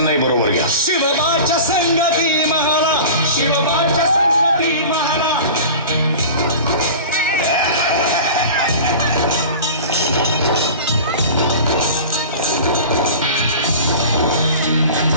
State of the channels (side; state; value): both; inverted; correlation -0.37